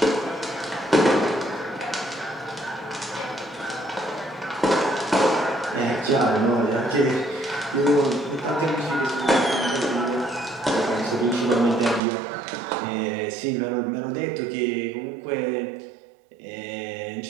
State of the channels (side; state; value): left; drops out; at 12.0 s